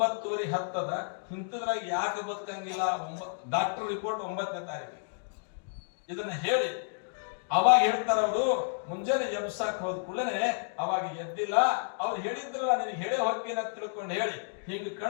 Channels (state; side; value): silent; right; digital silence